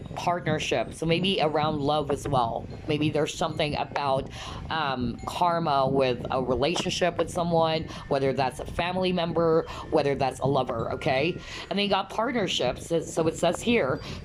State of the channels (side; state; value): both; identical; correlation 1.00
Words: partnership. So maybe around love as well. Maybe there's something about karma with a relationship with someone, whether that's a family member, whether that's a lover, okay? And then you got partnerships. So it says here,